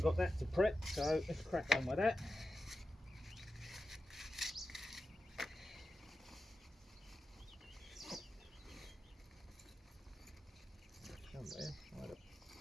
that to prep, so let's crack on with that. Somewhere I had a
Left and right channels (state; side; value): normal; both; correlation 0.92